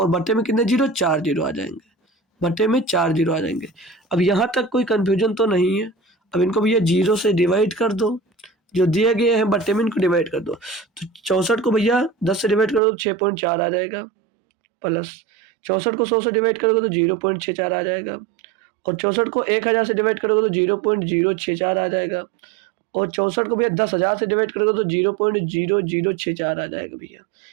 बट्टे में कितने जीरो? 4 जीरो आ जाएंगे, बट्टे में 4 जीरो आ जाएंगे। अब यहाँ तक कोई कंफ्यूजन तो नहीं है। अब इनको भैया जीरो से डिवाइड कर दो, जो दिए गए हैं बट्टे में इनको डिवाइड कर दो। तो 64 को भैया 10 से डिवाइड कर दो तो 6.4 आ जाएगा, प्लस 64 को 100 से डिवाइड करोगे तो 0.64 आ जाएगा, और 64 को 1000 से डिवाइड करोगे तो 0.064 आ जाएगा, और 64 को भैया 10,000 से डिवाइड करोगे तो 0.0064 आ जाएगा भैया।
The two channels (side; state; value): left; drops out; at 12.8 s